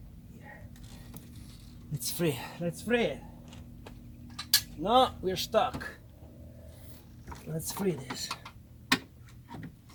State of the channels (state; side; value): identical; both; correlation 1.00